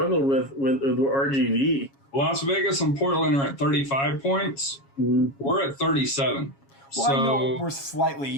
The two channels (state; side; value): late; right; 7.3 ms